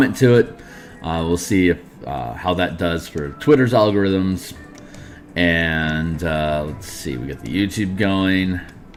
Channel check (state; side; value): identical; both; correlation 1.00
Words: to it. We'll see if how that does for Twitter's algorithms. And let's see, we got the YouTube going.